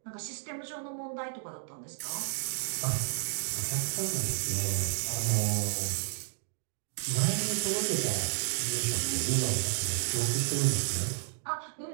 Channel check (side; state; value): left; silent; digital silence